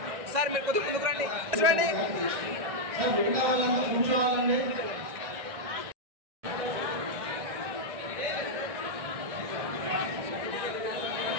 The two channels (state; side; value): late; left; 1.6 ms